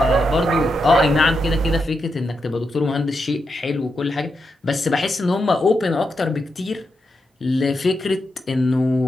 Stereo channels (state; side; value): normal; both; correlation 0.85